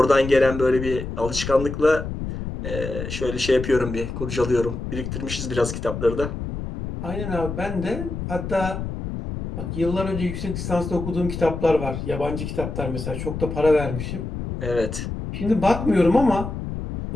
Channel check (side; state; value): left; noise; rumble, 6 dB below the sound